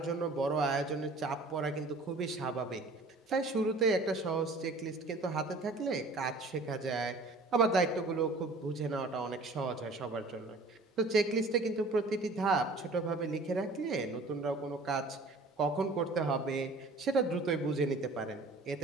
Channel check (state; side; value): quieter; left; 3.1 dB